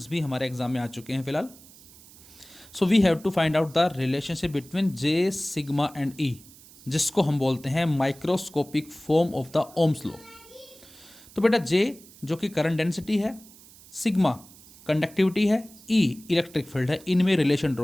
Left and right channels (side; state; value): right; noise; hiss, 22 dB below the sound